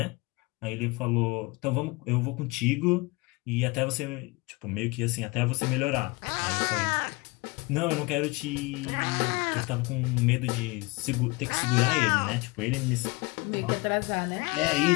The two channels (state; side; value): quieter; right; 25.0 dB